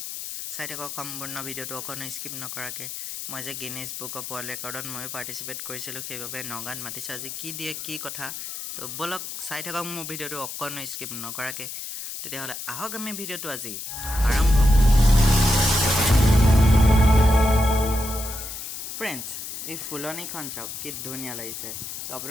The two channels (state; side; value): noise; left; hiss, 8 dB below the sound